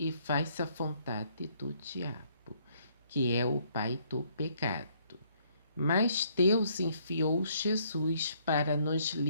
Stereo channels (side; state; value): both; inverted; correlation -0.67